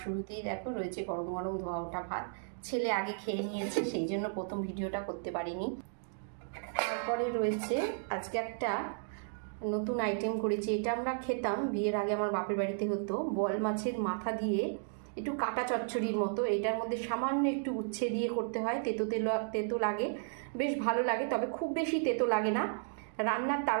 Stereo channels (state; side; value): silent; left; digital silence